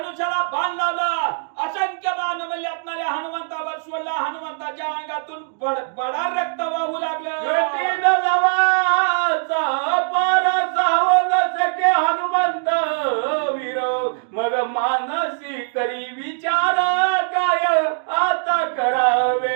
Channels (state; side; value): silent; left; digital silence